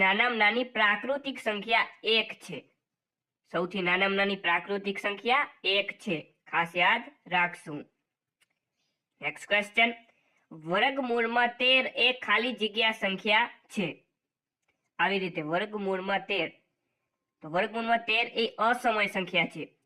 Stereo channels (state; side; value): identical; both; correlation 1.00